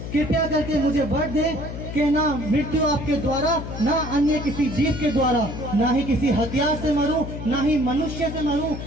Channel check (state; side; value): noise; left; hum, 8 dB below the sound